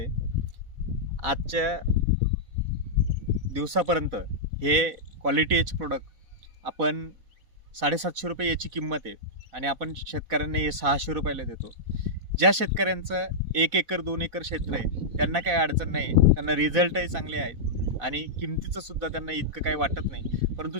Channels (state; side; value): late; left; 4.0 ms